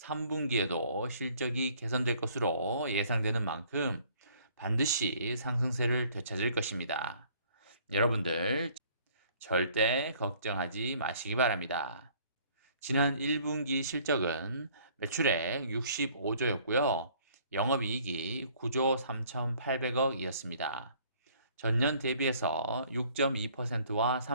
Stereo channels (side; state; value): both; inverted; correlation -0.58